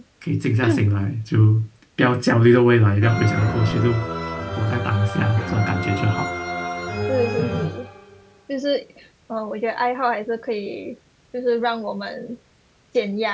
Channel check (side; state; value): both; identical; correlation 1.00